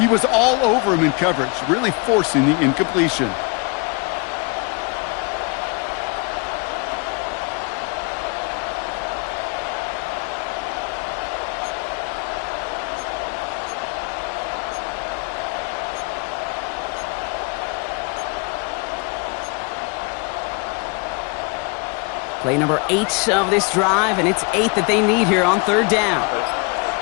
was all over him in coverage, really forcing the incompletion. Play number 8 of this drive, and it's 8 that they need here on third down. They'll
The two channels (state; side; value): quieter; right; 31.9 dB